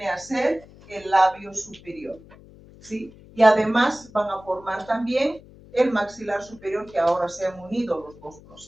a ser el labio superior, ¿sí? Y además van a formar también el maxilar superior, que ahora se han unido los dos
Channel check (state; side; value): noise; left; hum, 22 dB below the sound